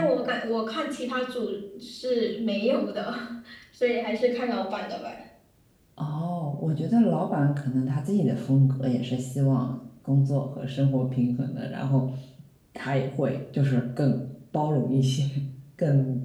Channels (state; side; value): identical; both; correlation 1.00